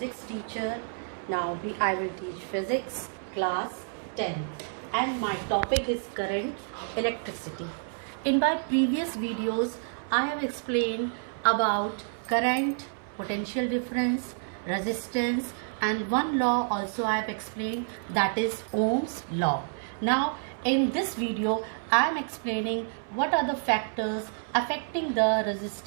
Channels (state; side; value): silent; left; 57 dB below the other